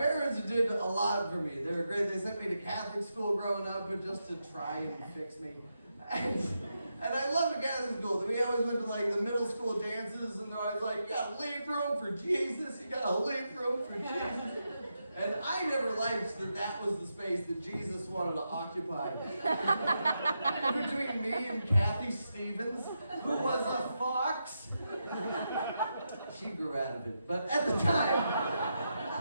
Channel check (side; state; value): both; inverted; correlation -0.85